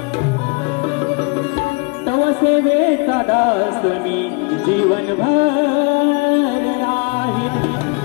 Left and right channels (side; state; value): right; quieter; 31.5 dB